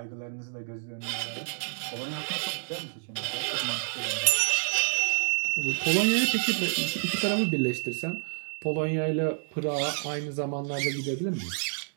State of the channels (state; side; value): silent; left; digital silence